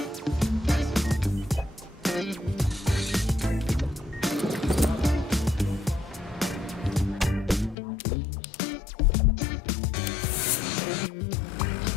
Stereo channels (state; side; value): drops out; right; at 7.8 s